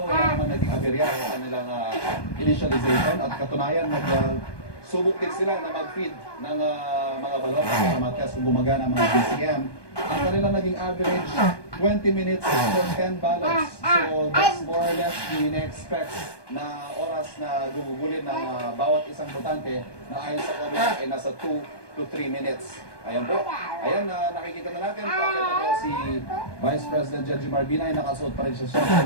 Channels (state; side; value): late; right; 1.2 ms